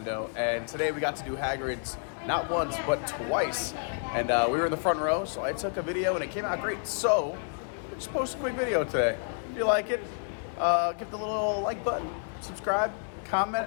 and today we got to do Hagrids not once but twice. And we were in the front row, so I took a video and it came out great. So just post a quick video today. If you like it, give the little like button, subscribe,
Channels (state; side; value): silent; right; 58 dB below the other